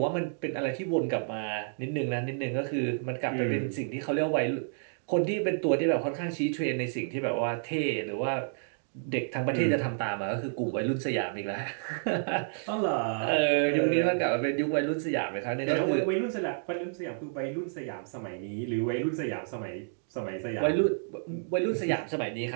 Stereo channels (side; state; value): left; silent; digital silence